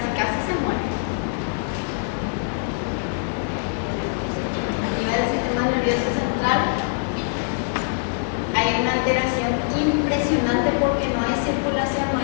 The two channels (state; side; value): silent; right; digital silence